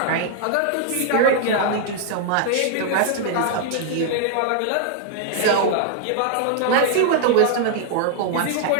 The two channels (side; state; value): both; different; correlation 0.00